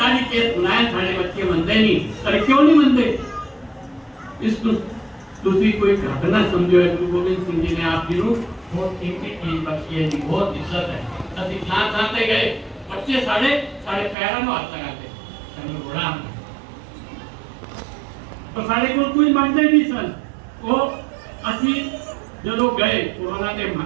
केस सुनाया, सारे बच्चे मनते नहीं। अरे क्यों नहीं मनते? इसको दूसरी कोई घटना समझो है। गुरु गोविंद सिंह जी ने आप जी बहुत कीमती चीज बख्शी है जी, बहुत इज्जत है। असि थां ते गए, बच्चे साढ़े पैरों में हाथ लगाते, चलो बड़ा तो साढ़े को कोई मानते नहीं सन। वो असी जो गए कोरोना के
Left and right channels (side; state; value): left; drops out; at 14.2 s